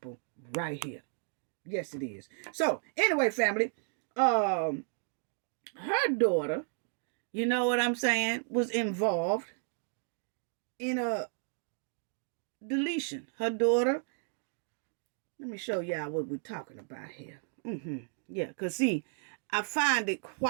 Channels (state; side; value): silent; left; 56 dB below the other